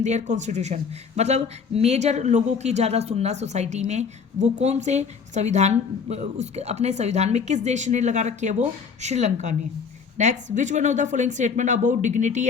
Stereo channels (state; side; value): quieter; right; 5.9 dB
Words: their constitution, मतलब मेजर लोगों की ज़्यादा सुनना सोसाइटी में, वो कौन से संविधान, उसके अपने संविधान में किस देश ने लगा रखी है, वो श्रीलंका ने। Next, which one of the following statement about dignity